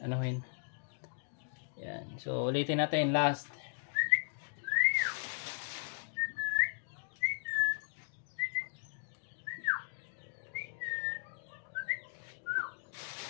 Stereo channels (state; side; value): silent; right; digital silence